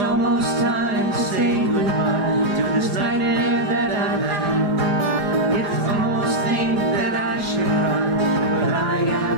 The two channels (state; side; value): late; left; 4.8 ms